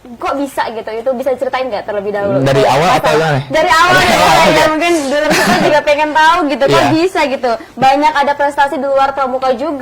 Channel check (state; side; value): identical; both; correlation 1.00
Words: kok bisa gitu? Itu bisa ceritain nggak terlebih dahulu? Dari awal atau gimana? Dari awal ya, mungkin dulu kita juga pengen tahu gitu, kok Iya. bisa gitu. Banyak ada prestasi di luar Pramuka